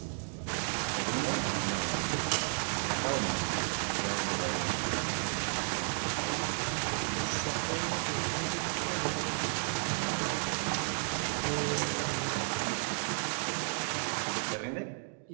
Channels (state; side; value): silent; left; 56 dB below the other